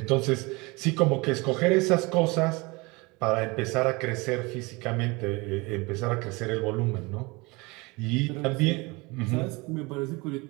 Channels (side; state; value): left; quieter; 25.4 dB